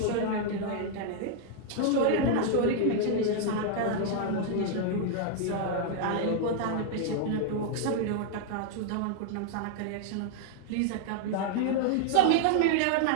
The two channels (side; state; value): both; different; correlation -0.01